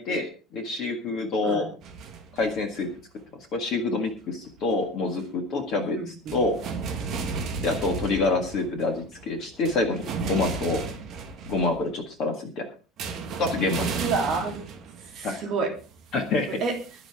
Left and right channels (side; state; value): both; normal; correlation 0.33